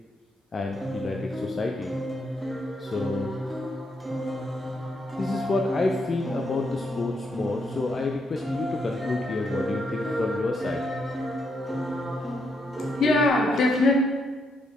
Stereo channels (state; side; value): normal; both; correlation 0.78